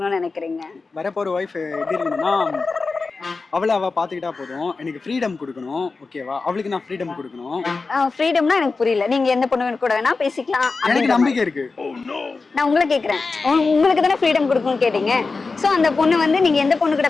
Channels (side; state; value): right; quieter; 4.1 dB